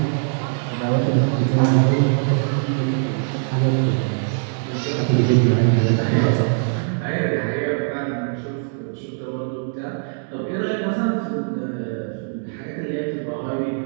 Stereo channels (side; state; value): left; silent; digital silence